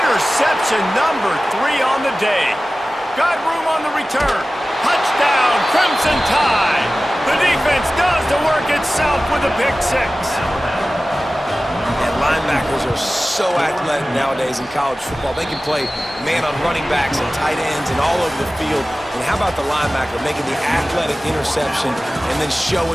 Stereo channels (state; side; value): normal; both; correlation 0.96